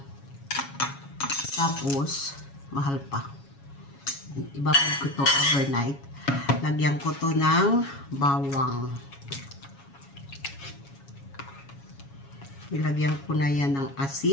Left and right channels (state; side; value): late; right; 7.2 ms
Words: Tapos, mahal pa. Ibabad ko to overnight. Lagyan ko to ng bawang. Ilagyan ko na yan ng